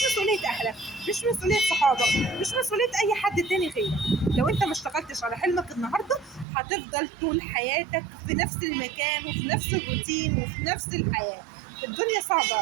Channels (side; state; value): left; drops out; at 6.5 s